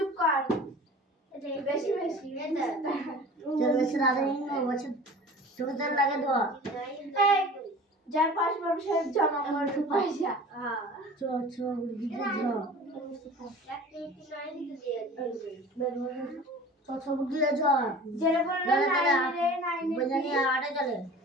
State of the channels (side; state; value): both; normal; correlation 0.41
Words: কর বেশি বেশি চল বেশি রাধে নিয়ে বসে তোদের লাগে তো এই যার পাঁচ বছর জমা করতে পয়সা হ্যাঁ চো চো দিতে যাও চো চো দিয়ে যাও যেটা বললো নাই বজানি আড়ে চলে